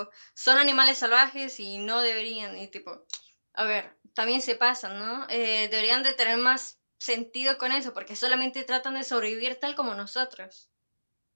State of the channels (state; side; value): inverted; both; correlation -1.00